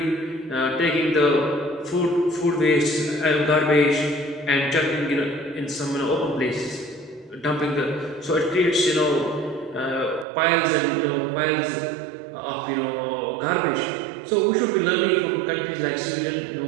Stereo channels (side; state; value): left; drops out; at 10.2 s